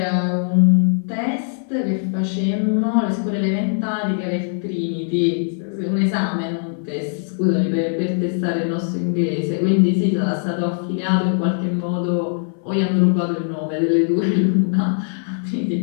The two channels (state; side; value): silent; right; 63 dB below the other